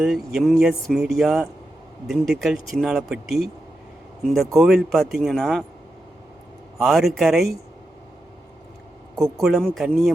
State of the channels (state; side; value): normal; both; correlation 0.88